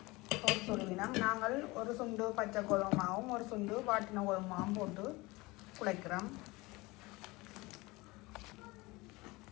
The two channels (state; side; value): quieter; right; 22.7 dB